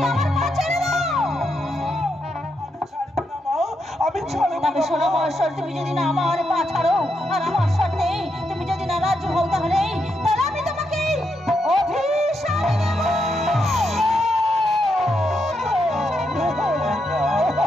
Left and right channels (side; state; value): both; normal; correlation 0.81